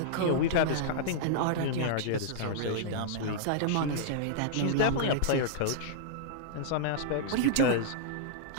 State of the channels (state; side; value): different; both; correlation -0.02